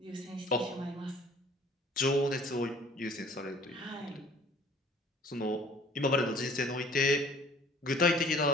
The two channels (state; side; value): normal; both; correlation 0.53